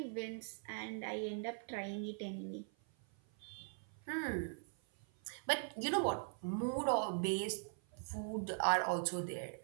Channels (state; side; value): silent; left; 50 dB below the other